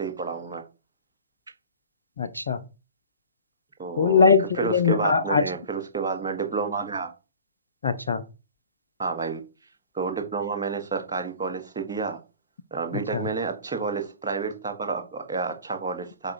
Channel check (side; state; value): both; inverted; correlation -0.45